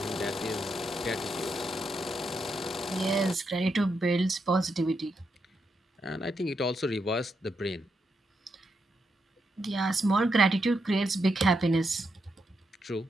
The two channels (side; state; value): both; normal; correlation 0.82